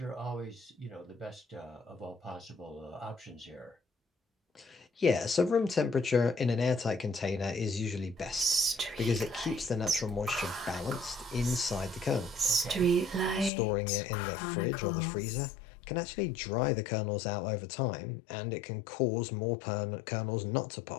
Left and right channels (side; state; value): right; drops out; at 13.5 s